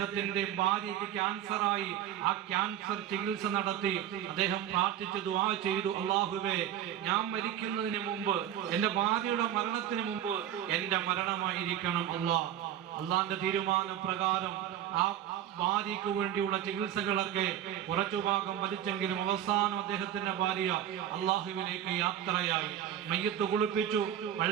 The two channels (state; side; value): quieter; left; 10.7 dB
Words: ഭാര്യയ്ക്ക് ക്യാൻസറായി. ആ ക്യാൻസർ ചികിത്സ നടത്തി അദ്ദേഹം പ്രാർത്ഥിച്ചു, ദുആ ചെയ്തു, അല്ലാഹുവേ, ഞാൻ മരിക്കുന്നതിന് മുമ്പ്, എന്റെ ഭാര്യയുടെ മരണത്തിന് മുമ്പ് എന്റെ മരണമായിരിക്കണം അല്ലാഹ്. അള്ളാന്റെ തീരുമാന പ്രകാരം ആ ഭാര്യയ്ക്ക് വേണ്ടിയുള്ള ചികിത്സകളൊക്കെ കുറച്ചു ഭാഗം വലിച്ചെങ്കിലും അവസാനം അദ്ദേഹത്തിന്റെ ഭാര്യ അള്ളാഹുവിലേക്ക് യാത്രയായി. മയ്യത്ത് കുളിപ്പിച്ചു,